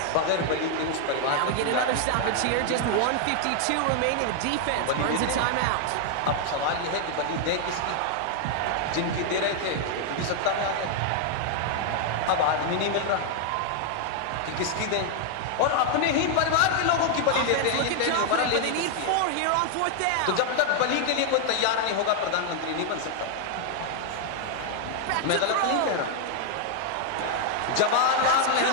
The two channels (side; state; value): both; different; correlation 0.00